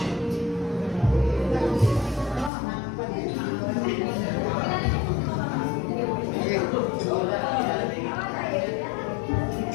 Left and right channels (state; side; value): drops out; right; at 2.5 s